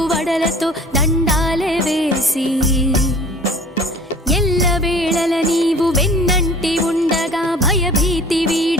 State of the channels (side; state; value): both; normal; correlation 0.47